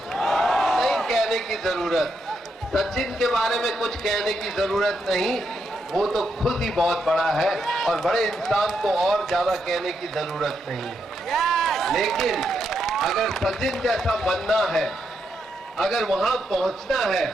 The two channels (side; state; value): both; normal; correlation 0.81